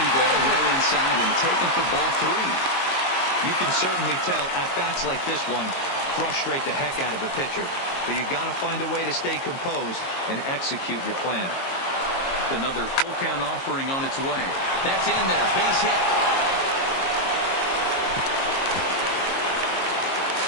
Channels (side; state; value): right; late; 22 ms